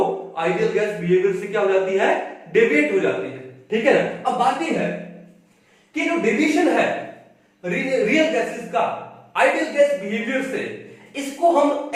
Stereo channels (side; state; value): both; identical; correlation 1.00